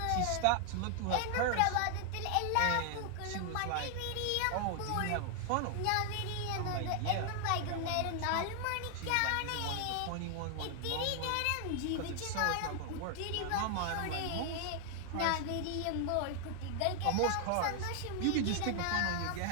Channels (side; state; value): both; different; correlation 0.00